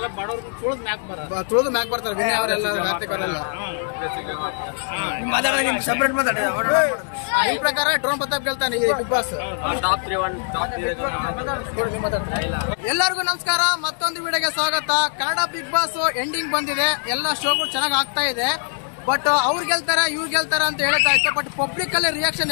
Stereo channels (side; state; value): right; silent; digital silence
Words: ಬಡವ್ರನ್ನ ತುಳಿದು ಮ್ಯಾಕ್ ಬರ್ತಾರೆ ವಿನಯ್ ಅವರೆಲ್ಲ ಕಾರ್ತಿಕ್ ನಿಮ್ ಪ್ರಕಾರ ಡ್ರೋನ್ ಪ್ರತಾಪ್ ಗೆಲ್ತಾನೆ ಈ ಬಿಗ್ ಬಾಸ್. ಎಲ್ಲರಿಗೂ ನಮಸ್ಕಾರ, ಮತ್ತೊಂದು ವಿಡಿಯೋಗೆ ಸ್ವಾಗತ. ಕನ್ನಡ ಬಿಗ್ ಬಾಸ್ ಎಂಡಿಂಗ್ ಬಂದಿದೆ, ಎಲ್ಲ ಶೋಗಳು ಚೆನ್ನಾಗಿ ಆಗ್ತಾ ಇದೆ. ಬಟ್ ಅವ್ರು ಗೆಲ್ತಾರೆ ಇವ್ರು ಗೆಲ್ತಾರೆ ಅಂತ ಹೇಳ್ತಾ ಇತ್ತು. ಬಟ್ ಪಬ್ಲಿಕ್ ಅಲ್ಲಿ ರಿಯಾಕ್ಷನ್